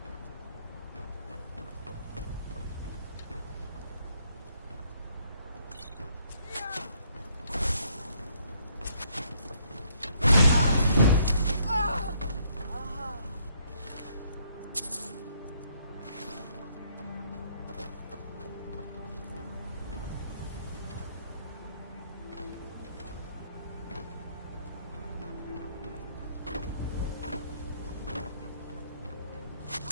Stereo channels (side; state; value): both; inverted; correlation -0.68